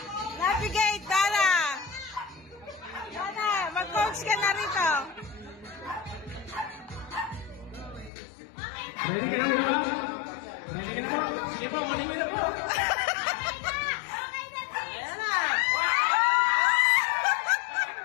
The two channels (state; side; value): drops out; right; at 8.1 s